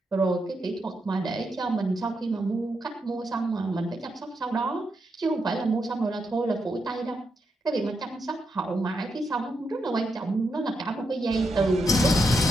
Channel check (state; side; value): normal; both; correlation 0.83